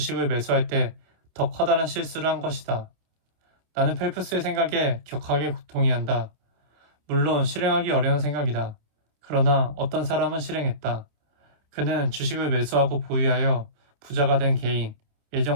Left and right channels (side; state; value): left; late; 27 ms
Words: 매수할 때 더 커다란 실수를 한 것이다. 나는 펠프스의 생각에 격하게 동의한다. 물론 실행하기 어려운 생각이다. 그러나 어떤 사람은 실행했다. 그는 주식을 매수하고 보유하여 부자가 된 개인,